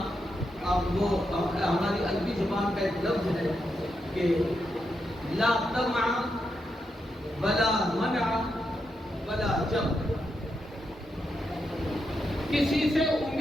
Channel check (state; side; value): normal; both; correlation 0.84